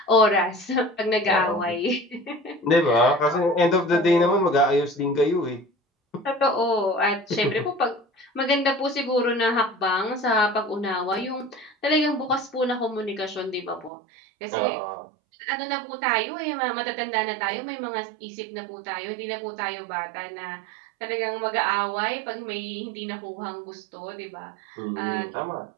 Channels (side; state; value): left; drops out; at 13.9 s